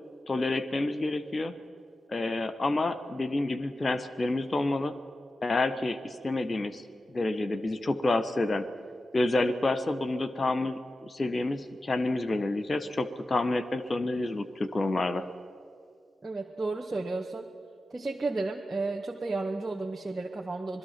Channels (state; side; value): normal; both; correlation 0.93